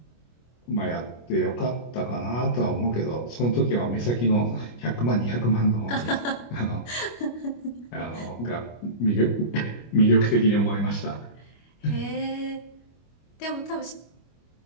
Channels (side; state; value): right; late; 25 ms